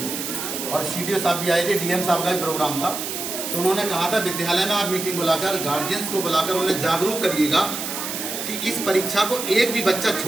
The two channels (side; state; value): right; noise; hiss, 5 dB below the sound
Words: और CDO साहब भी आए थे, DM साहब का भी प्रोग्राम था। तो उन्होंने कहा था विद्यालय में आप मीटिंग बुलाकर गार्जियंस को बुलाकर उन्हें जागरूक करिएगा कि इस परीक्षा को एक भी बच्चा